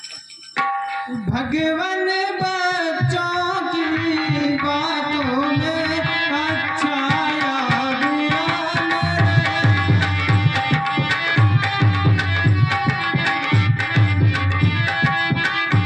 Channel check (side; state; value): both; identical; correlation 1.00